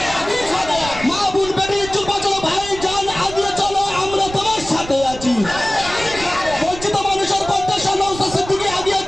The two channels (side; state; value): right; noise; rumble, 13 dB below the sound